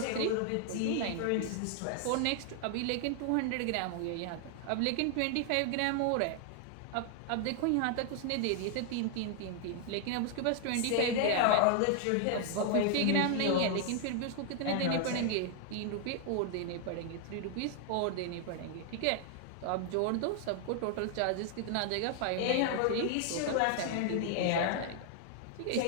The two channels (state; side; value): different; both; correlation 0.00